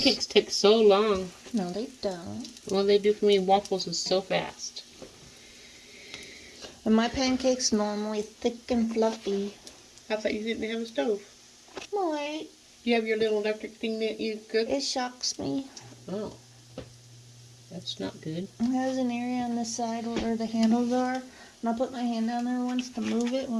take so long. No, they don't. All they do for me, waffles, is so fast. And my pancakes normally thick and fluffy. I thought you didn't have a stove. Wait, You have your little electric thing that you cook? it shocks me. Oh. That's not good. It has an area on the side where the handles are And I put my hand down there once to move it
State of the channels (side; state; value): both; identical; correlation 1.00